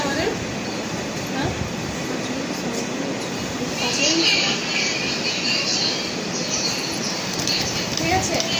আমাদের। ঠিক আছে,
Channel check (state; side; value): identical; both; correlation 1.00